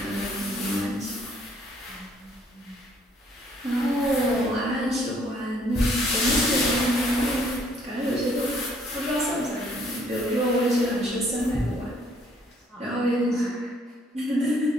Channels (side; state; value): both; normal; correlation 0.64